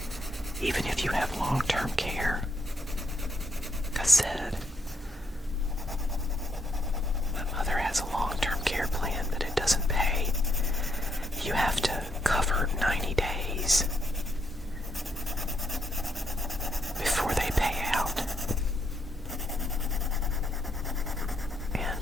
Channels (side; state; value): both; normal; correlation 0.76